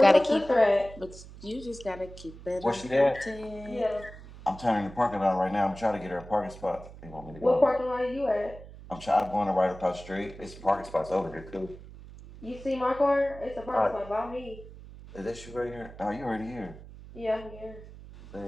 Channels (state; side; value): noise; right; hum, 16 dB below the sound